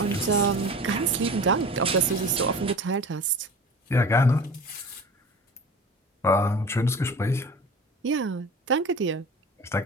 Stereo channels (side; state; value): both; normal; correlation 0.37